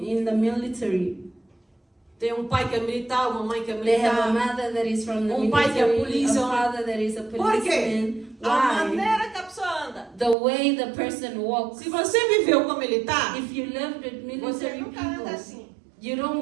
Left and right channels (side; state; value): left; drops out; at 10.4 s